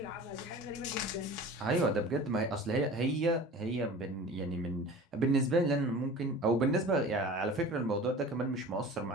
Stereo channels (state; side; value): normal; both; correlation 0.39